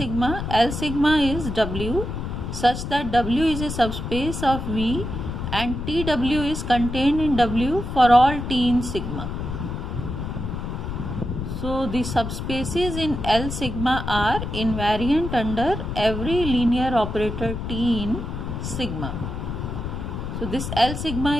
L sigma is W such that W is a subspace of V and TW is contained in W for all T in sigma. So the subspaces in L sigma are invariant under every linear operator T in sigma. So this L sigma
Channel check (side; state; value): left; noise; rumble, 5 dB below the sound